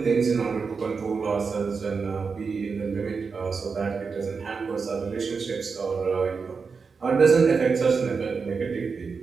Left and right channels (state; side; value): quieter; left; 5.1 dB